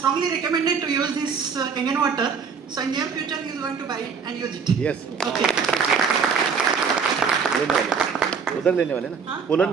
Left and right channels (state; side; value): quieter; left; 6.0 dB